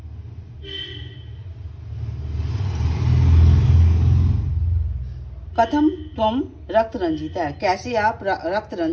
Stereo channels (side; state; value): both; identical; correlation 1.00